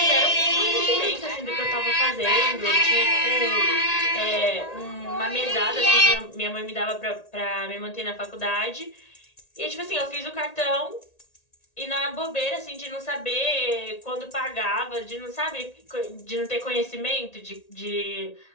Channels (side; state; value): right; late; 1.8 ms